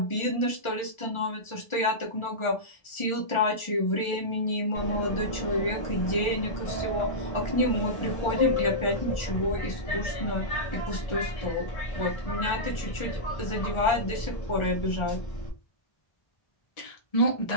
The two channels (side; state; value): right; late; 1.4 ms